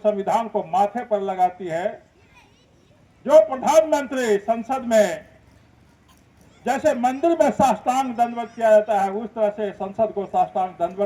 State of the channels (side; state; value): both; identical; correlation 1.00